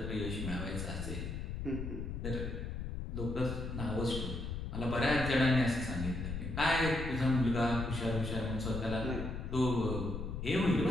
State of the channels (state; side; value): noise; left; rumble, 5 dB below the sound